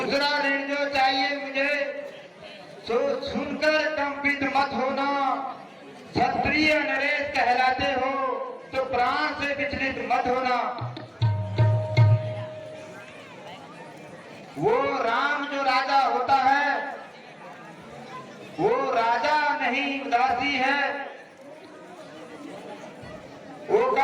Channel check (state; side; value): identical; both; correlation 1.00